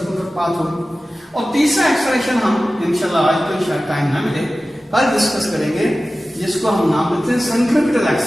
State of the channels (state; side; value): normal; both; correlation 0.96